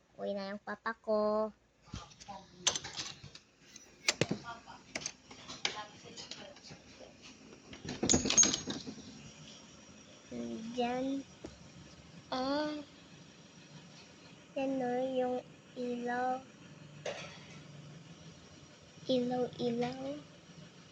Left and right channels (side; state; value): both; identical; correlation 1.00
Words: Uwi na yung papa ko. Diyan. Yan o, yung ilaw. Ilaw.